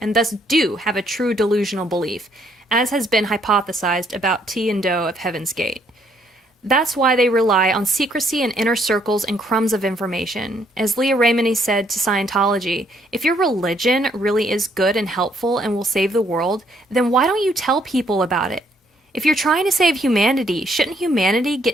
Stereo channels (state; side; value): normal; both; correlation 0.68